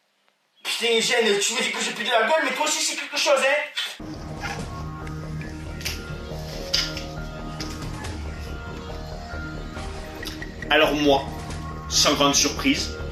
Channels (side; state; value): both; identical; correlation 1.00